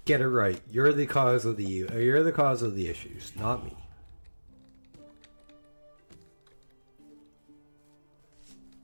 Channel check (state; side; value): inverted; both; correlation -1.00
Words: get it right. You're the cause of the issues, not me.